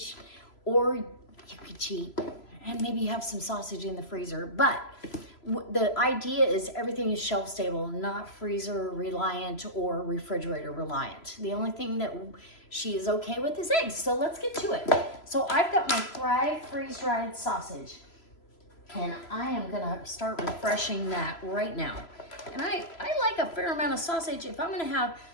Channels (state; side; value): late; right; 3.0 ms